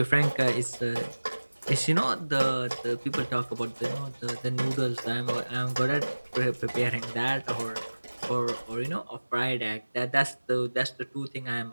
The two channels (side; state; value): both; inverted; correlation -1.00